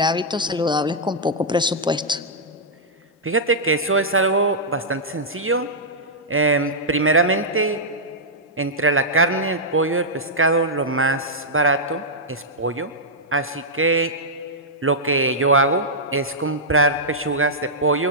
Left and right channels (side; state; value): both; normal; correlation -0.09